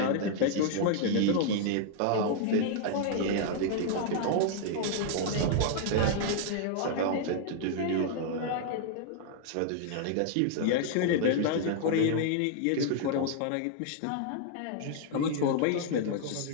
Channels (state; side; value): different; both; correlation -0.01